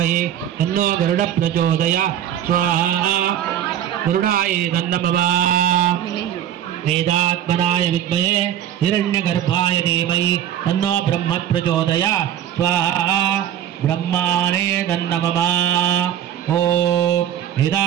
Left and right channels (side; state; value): left; quieter; 10.8 dB